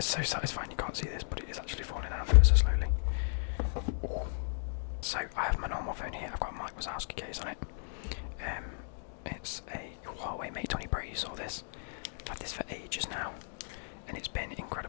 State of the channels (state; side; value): silent; right; digital silence